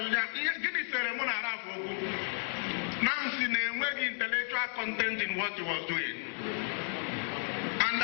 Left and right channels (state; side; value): silent; right; digital silence